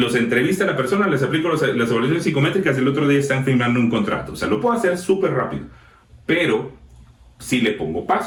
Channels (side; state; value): both; identical; correlation 1.00